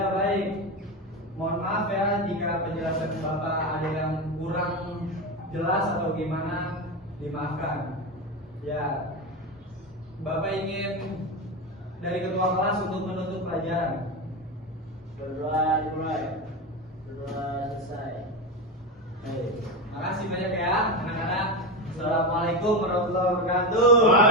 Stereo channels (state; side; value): normal; both; correlation 0.17